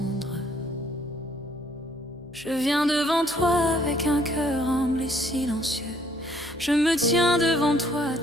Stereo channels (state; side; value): noise; left; hum, 24 dB below the sound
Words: je viens devant toi avec un cœur humble et silencieux. Je me tiens devant toi